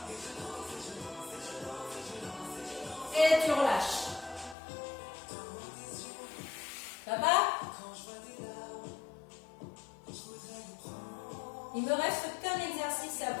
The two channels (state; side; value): drops out; right; at 4.5 s